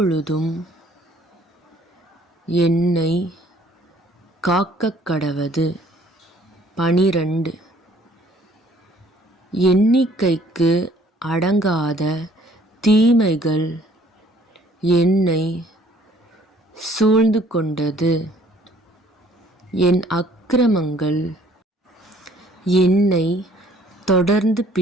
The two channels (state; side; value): normal; both; correlation 0.59